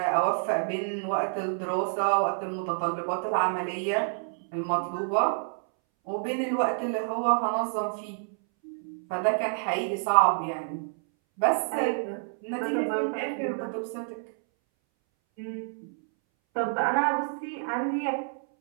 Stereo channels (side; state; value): left; silent; 59 dB below the other